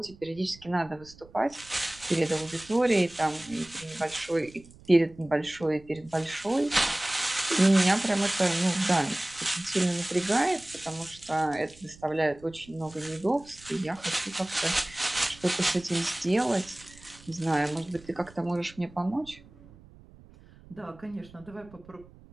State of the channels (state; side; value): noise; right; rumble, 23 dB below the sound